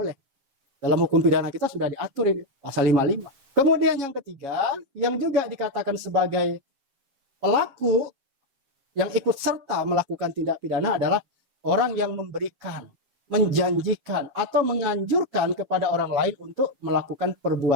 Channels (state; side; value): late; left; 7.3 ms